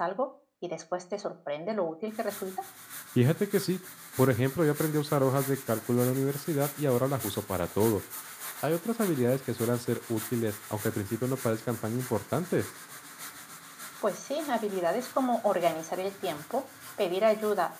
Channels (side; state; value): both; identical; correlation 1.00